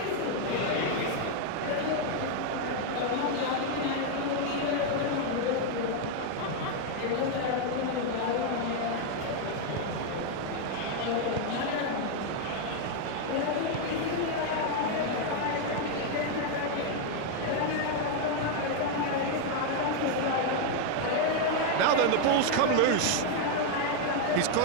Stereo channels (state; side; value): different; both; correlation 0.00